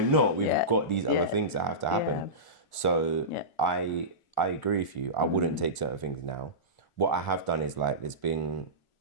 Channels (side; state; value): right; late; 1.4 ms